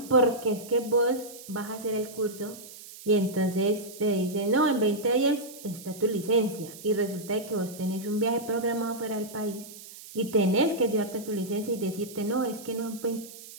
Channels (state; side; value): noise; right; hiss, 16 dB below the sound